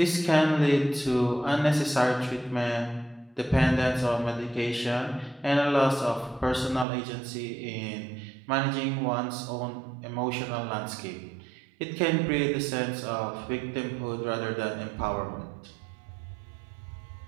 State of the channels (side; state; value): left; drops out; at 6.9 s